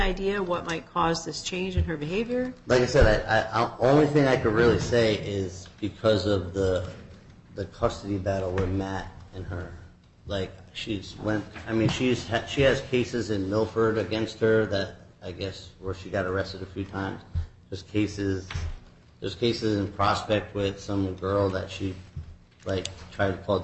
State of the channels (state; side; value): identical; both; correlation 1.00